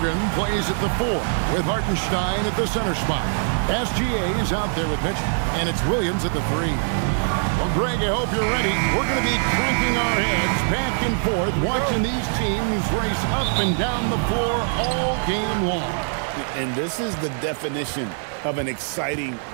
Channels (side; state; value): left; silent; digital silence